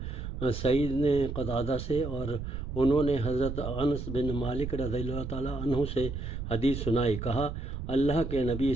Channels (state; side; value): noise; right; rumble, 6 dB below the sound